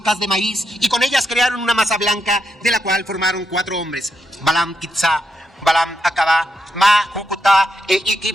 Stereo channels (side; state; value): both; normal; correlation 0.82